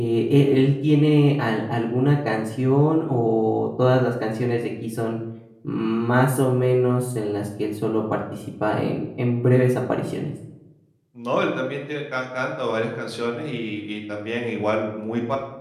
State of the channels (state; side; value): identical; both; correlation 1.00